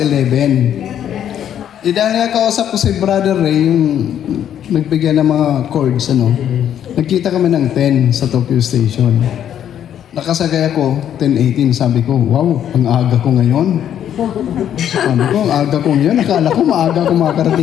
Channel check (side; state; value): right; quieter; 10.0 dB